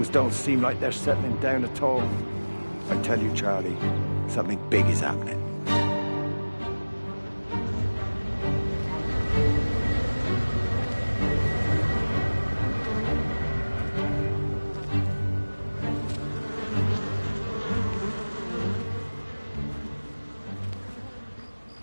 don't seem like they're settling down at all. I tell you, Charlie, something big is happening.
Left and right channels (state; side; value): inverted; both; correlation -1.00